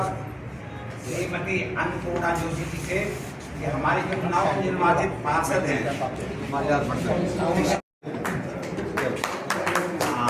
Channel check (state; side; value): identical; both; correlation 1.00